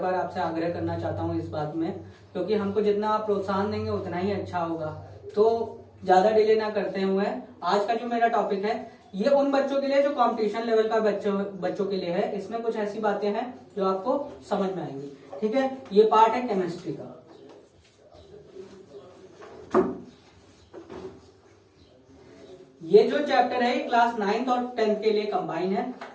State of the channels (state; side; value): identical; both; correlation 1.00